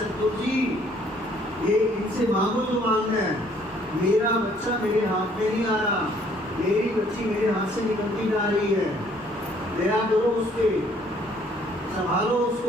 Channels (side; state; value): both; normal; correlation 0.62